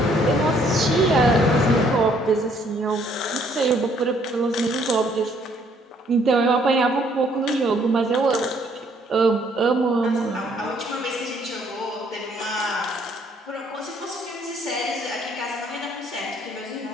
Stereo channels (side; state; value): both; normal; correlation 0.65